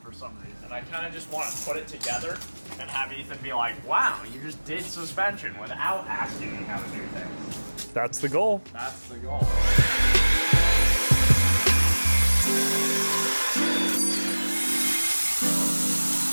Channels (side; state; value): both; inverted; correlation -1.00